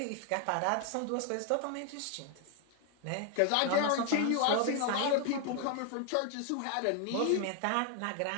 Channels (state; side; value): different; both; correlation 0.01